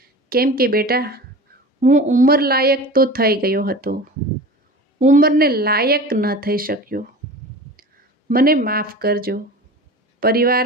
કેમ કે બેટા, હું ઉંમર લાયક તો થઈ ગયો હતો, ઉંમરને લાયક ન થઈ શક્યો. મને માફ કરજો. પરિવાર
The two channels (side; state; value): both; normal; correlation 0.35